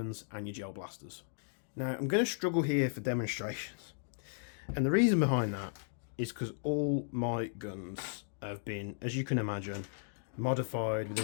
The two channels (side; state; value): right; silent; digital silence